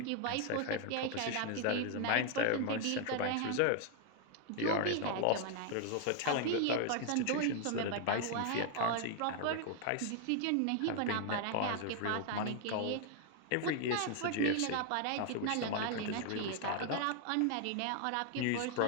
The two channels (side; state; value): both; different; correlation 0.00